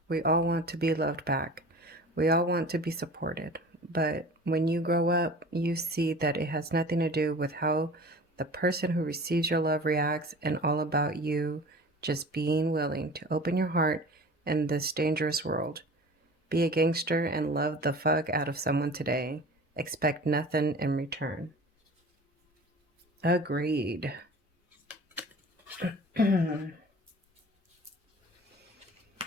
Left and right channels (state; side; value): normal; both; correlation 0.40